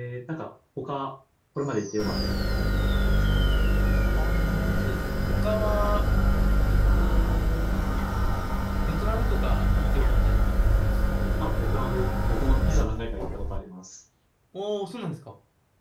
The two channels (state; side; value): identical; both; correlation 1.00